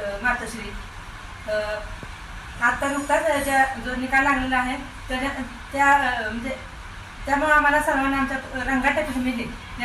मातोश्री। आता नुकताच जो निकाल लागलेला आहे त्यामुळे आम्हाला सर्वांना आमच्या रंगाटे फॅमिली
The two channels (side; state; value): both; identical; correlation 1.00